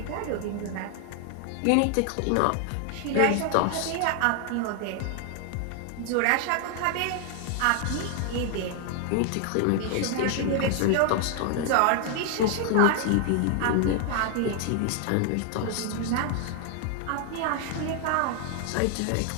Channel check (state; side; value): different; both; correlation 0.00